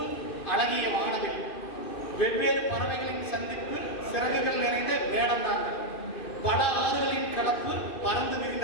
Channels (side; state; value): right; late; 2.5 ms